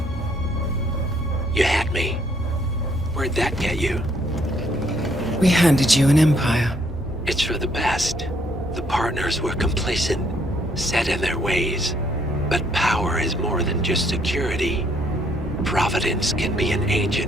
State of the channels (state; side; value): normal; both; correlation 0.68